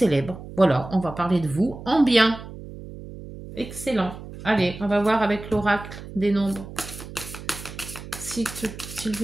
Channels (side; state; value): right; noise; hum, 13 dB below the sound